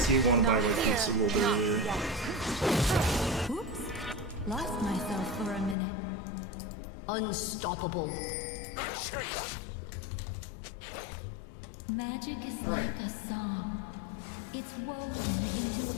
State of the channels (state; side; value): drops out; right; at 5.8 s